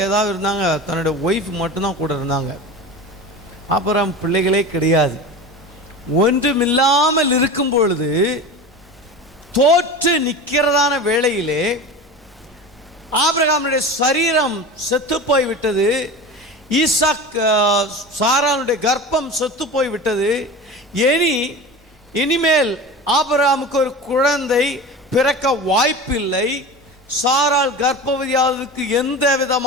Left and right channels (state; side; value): normal; both; correlation 0.31